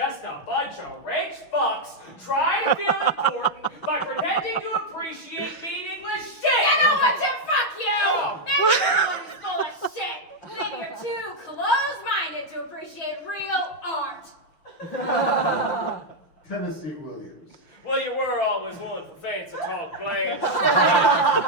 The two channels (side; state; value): right; late; 6.3 ms